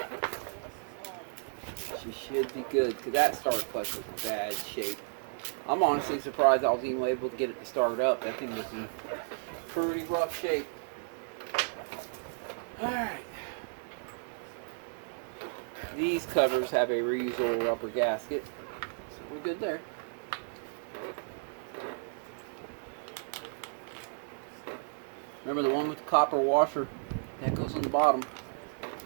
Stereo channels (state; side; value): silent; left; digital silence